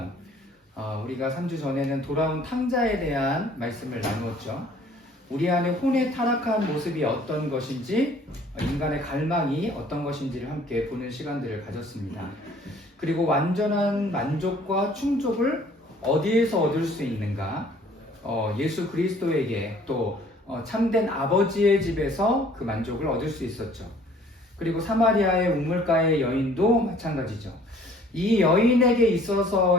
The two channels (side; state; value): both; normal; correlation 0.56